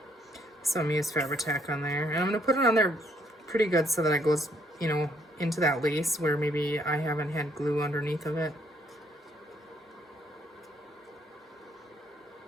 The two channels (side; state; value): both; normal; correlation 0.69